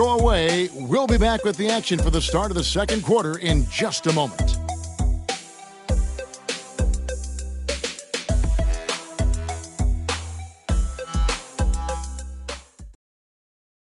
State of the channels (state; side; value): identical; both; correlation 1.00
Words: away. We'll be back with the action for the start of the second quarter in just a moment.